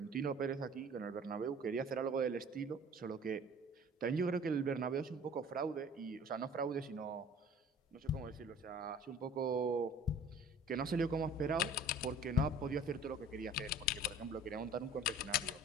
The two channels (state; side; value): normal; both; correlation 0.48